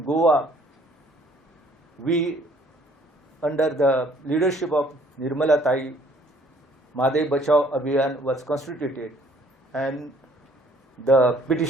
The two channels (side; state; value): both; normal; correlation 0.60